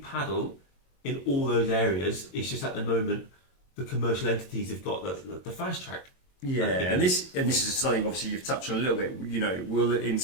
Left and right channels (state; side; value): late; right; 22 ms